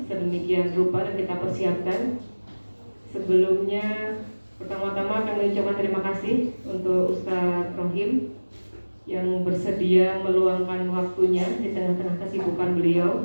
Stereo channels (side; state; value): both; inverted; correlation -1.00